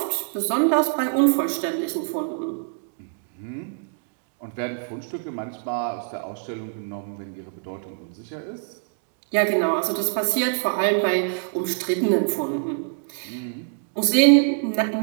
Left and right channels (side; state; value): left; silent; 62 dB below the other